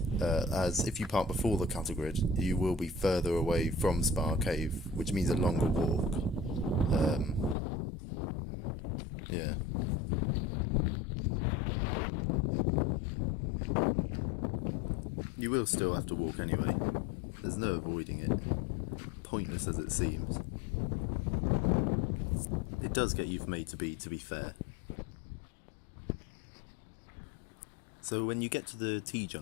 As if you park before the cattle grid, you will be further away from Spar Cave, which means a longer walk. Yeah. You will still have to walk anyway. There's no avoiding it. Pointless as it seems. It does get you from A to B, to be fair. So when you get to the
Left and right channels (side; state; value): right; drops out; at 7.6 s